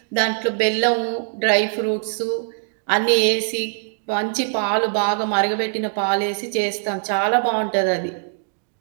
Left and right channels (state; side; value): silent; left; digital silence